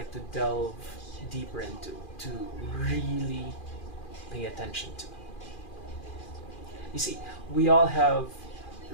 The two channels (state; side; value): late; right; 2.4 ms